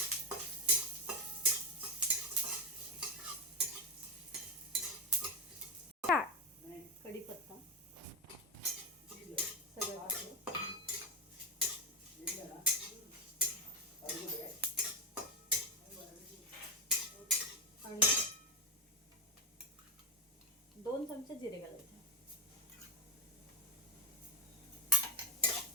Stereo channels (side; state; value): both; normal; correlation 0.10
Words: कढीपत्ता सगळं घातलं आणि 2 चमचे जिरे घालायचे।